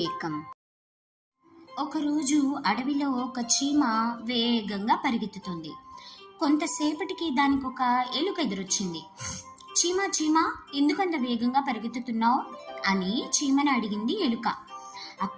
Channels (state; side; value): identical; both; correlation 1.00